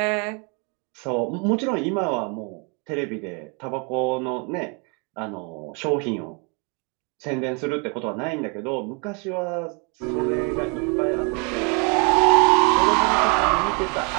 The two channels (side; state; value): left; quieter; 33.9 dB